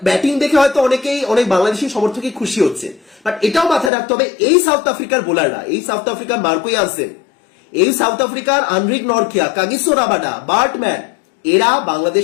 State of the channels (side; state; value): right; drops out; at 3.9 s